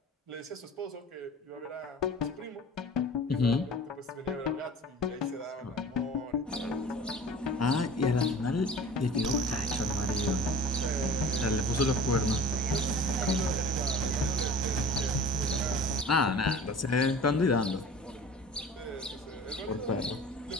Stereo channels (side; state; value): both; normal; correlation 0.41